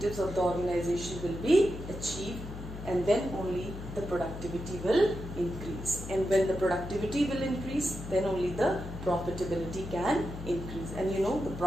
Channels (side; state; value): left; noise; hum, 10 dB below the sound